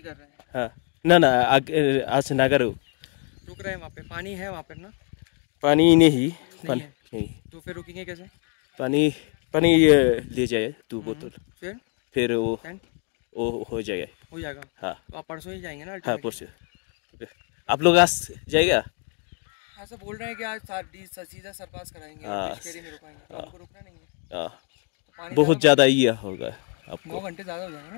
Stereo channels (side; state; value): right; quieter; 36.9 dB